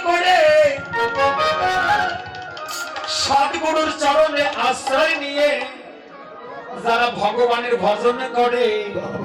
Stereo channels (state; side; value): identical; both; correlation 1.00